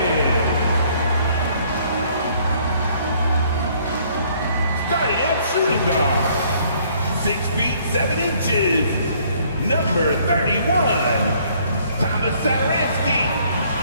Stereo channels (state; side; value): inverted; both; correlation -0.62